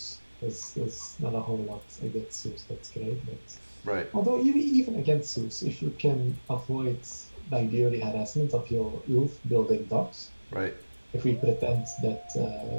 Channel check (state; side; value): inverted; both; correlation -1.00